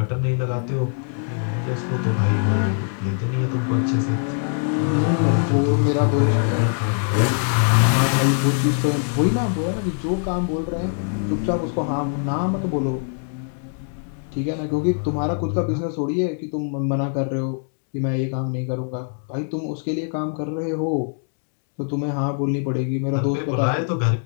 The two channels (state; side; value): silent; right; 58 dB below the other